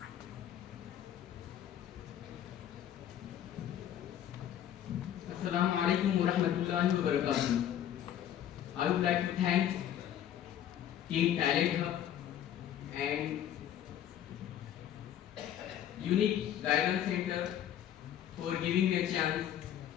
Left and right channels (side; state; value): right; quieter; 10.7 dB